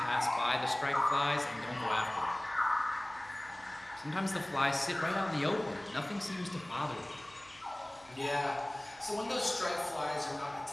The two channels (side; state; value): left; noise; hum, 29 dB below the sound